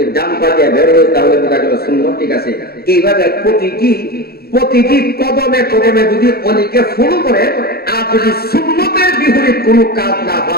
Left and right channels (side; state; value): right; late; 0.45 ms